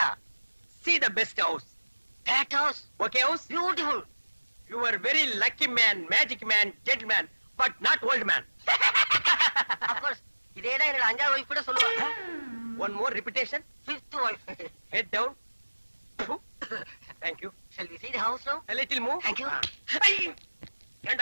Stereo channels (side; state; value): both; inverted; correlation -1.00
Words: See the best house. That house, Okay house? beautiful. You are very lucky man, magic man, gentleman, but not old man. Of course, இதேதான் என்னோட 5வது வைஃப் கூட சொல்லுவா. One more repetition. 5th wife. Head down. Thank you. Shall we see the house now? A little move. Thank you.